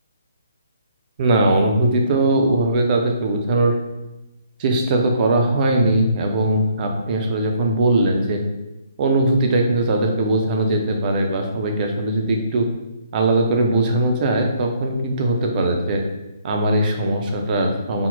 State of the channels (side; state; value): both; inverted; correlation -0.65